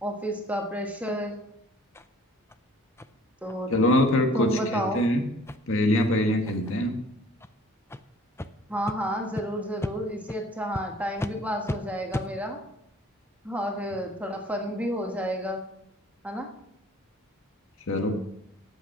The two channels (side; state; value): both; normal; correlation 0.53